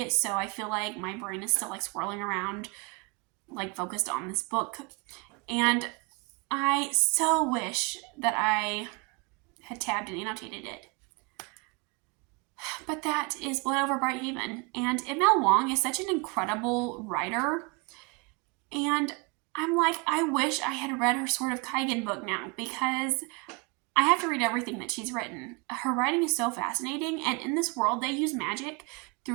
so I feel like my brain is still like swirling around, like focused on this book. And I so wish that I had tabbed and annotated it. But that is Blood Over Brighthaven. And M.L. Wong is such an incredible writer. And I'm like, I wish I had read her Sword of Kaigen book now, because I have to read everything that she's written. Her writing is so fascinating, and in this world, they use magic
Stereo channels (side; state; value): left; quieter; 29.8 dB